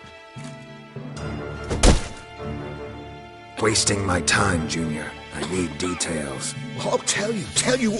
Wasting my time, Junior. I need details. I'll tell you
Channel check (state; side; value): identical; both; correlation 1.00